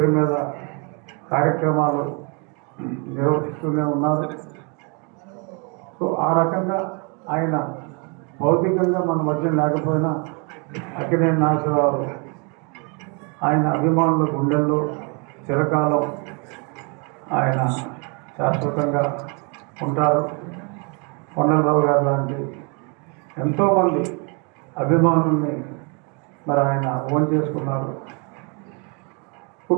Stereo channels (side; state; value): left; quieter; 33.9 dB